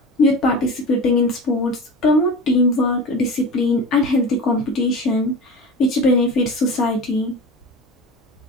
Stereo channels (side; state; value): both; normal; correlation 0.32